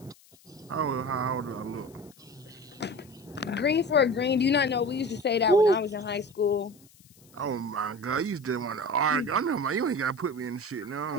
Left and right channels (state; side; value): noise; left; hiss, 27 dB below the sound